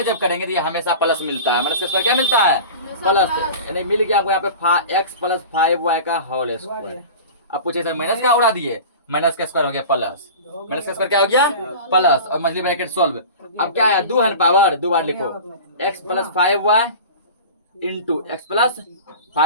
जब करेंगे तो ये हमेशा प्लस मिलता है, माइनस का स्क्वायर क्या मिलता है प्लस, यानी मिल गया आपको यहाँ पे x प्लस 5y का होल स्क्वायर। अब पूछे सर माइनस क्या उड़ा दिए, माइनस का स्क्वायर हो गया प्लस, माइनस का स्क्वायर क्या हो गया प्लस, और मछली ब्रैकेट सॉल्व। अब क्या है 2 है पावर, 2 बार लिखो x plus 5y into X plus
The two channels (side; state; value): both; inverted; correlation -0.35